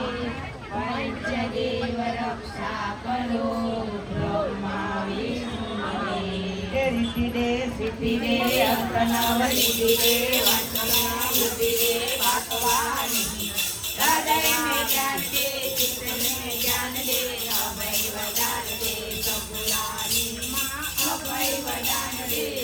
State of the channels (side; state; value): both; identical; correlation 1.00